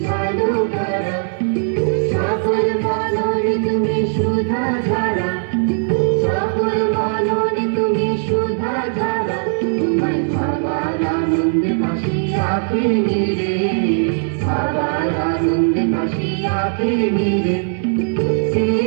আলো করা, সকল মননে তুমি সুধা ধারা, সকল মননে তুমি সুধা ধারা। তোমায় ভাবার আনন্দে ভাসি আঁখি নিরে, ভাবার আনন্দে ভাসি আঁখি নিরে। কে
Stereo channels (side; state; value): left; silent; digital silence